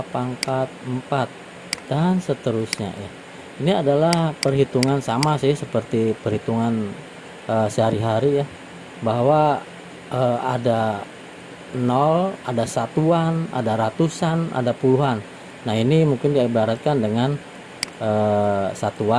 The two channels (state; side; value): identical; both; correlation 1.00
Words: pangkat 4, dan seterusnya ya. Ini adalah perhitungan sama sih seperti perhitungan sehari-hari ya, bahwa ada 0, ada satuan, ada ratusan, ada puluhan. Nah, ini mungkin diibaratkan dengan